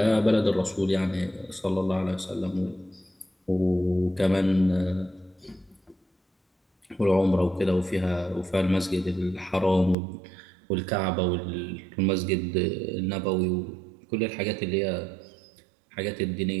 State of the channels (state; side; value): drops out; left; at 10.0 s